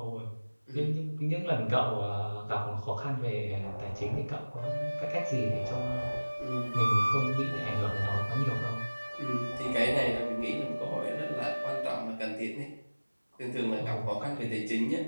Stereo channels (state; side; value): inverted; both; correlation -1.00